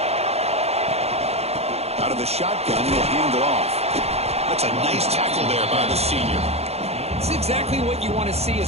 Out of the shotgun, he'll hand it off. That's a nice tackle there by the senior. It's exactly what you want to see as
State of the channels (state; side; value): late; left; 0.30 ms